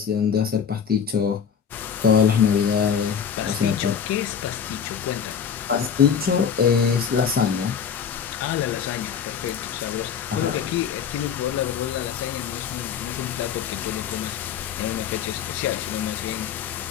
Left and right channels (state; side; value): quieter; right; 7.6 dB